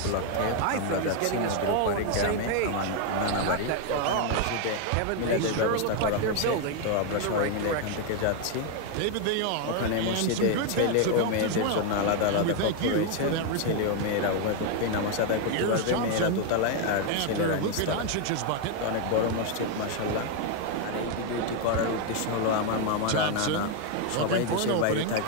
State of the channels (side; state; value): both; different; correlation 0.01